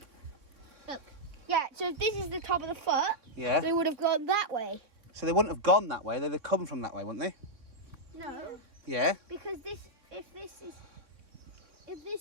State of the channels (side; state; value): left; late; 3.6 ms